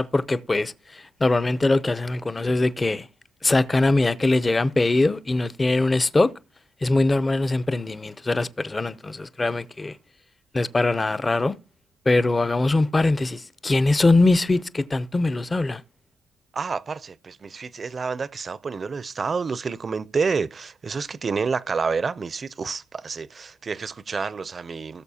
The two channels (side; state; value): both; normal; correlation 0.95